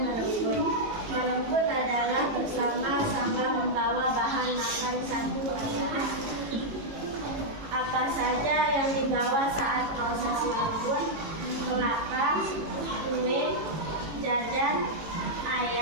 Merenggut adalah bersama-sama membawa bahan makan satu acara. Apa saja yang dibawa saat proses merenggut? Kelapa, kue, jajan,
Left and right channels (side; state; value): left; late; 18 ms